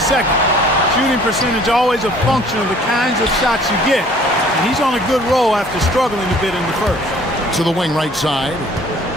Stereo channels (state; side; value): normal; both; correlation 0.54